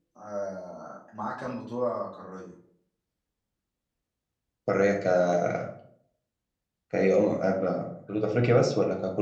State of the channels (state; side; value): identical; both; correlation 1.00